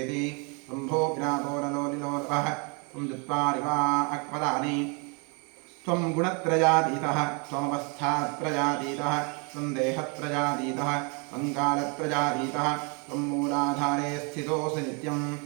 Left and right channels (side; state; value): left; quieter; 34.1 dB